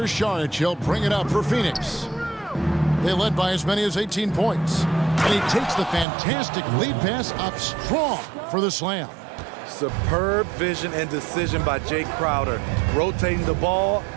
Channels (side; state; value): left; drops out; at 6.1 s